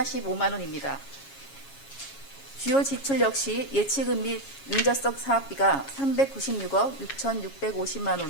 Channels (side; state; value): right; late; 7.3 ms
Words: 원입니다. 주요 지출 역시 예치금 및 융자성 사업비가 396억 6,650만